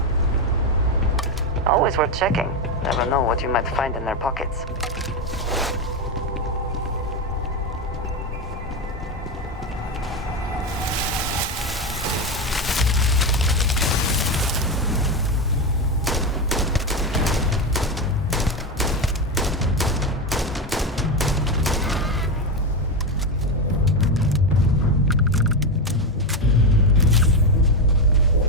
Always worth checking. Never know what you might find in their pockets.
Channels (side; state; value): both; normal; correlation 0.12